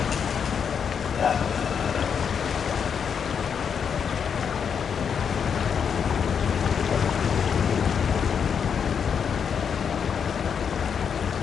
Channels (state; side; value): quieter; right; 7.1 dB